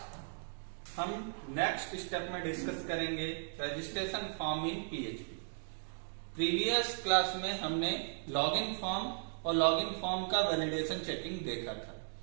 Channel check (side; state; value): left; silent; digital silence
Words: हम next step में डिस्कस करेंगे registration form in PHP. Previous class में हमने लॉगिन फॉर्म और लॉगिन फॉर्म का वैलिडेशन चेकिंग देखा था।